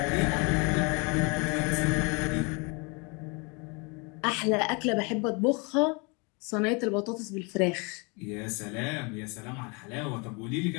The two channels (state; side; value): quieter; right; 31.2 dB